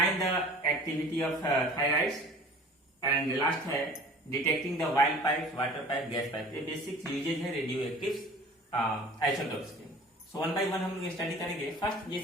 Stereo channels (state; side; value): normal; both; correlation 0.45